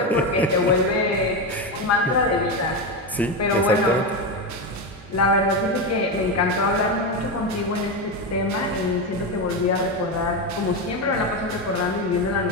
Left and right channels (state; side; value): normal; both; correlation 0.13